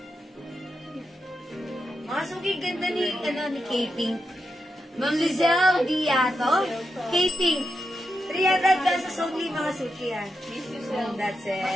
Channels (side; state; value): both; normal; correlation 0.86